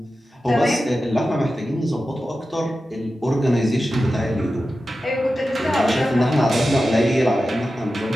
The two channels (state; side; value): normal; both; correlation 0.93